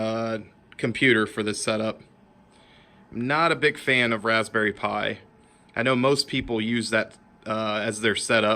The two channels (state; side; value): identical; both; correlation 1.00